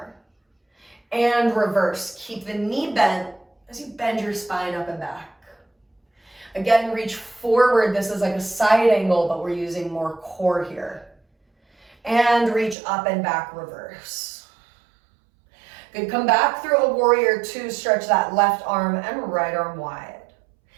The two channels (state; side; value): drops out; left; at 12.8 s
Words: And reverse, keep the knee bent as you bend your spine up and back. Again, reach forward. This is like a side angle, but we're using more core here. And reach up and back, reverse. Good, come back through a warrior two, stretch that left arm and right arm wide.